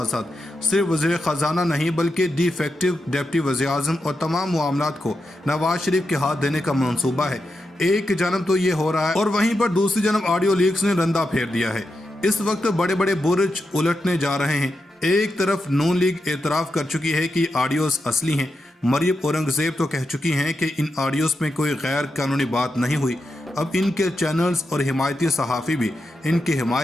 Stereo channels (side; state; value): both; normal; correlation 0.87